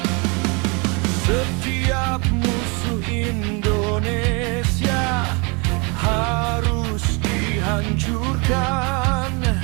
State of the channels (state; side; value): quieter; left; 30.9 dB